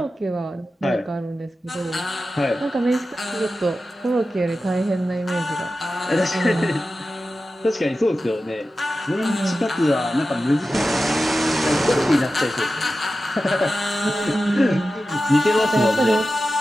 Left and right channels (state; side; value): normal; both; correlation 0.93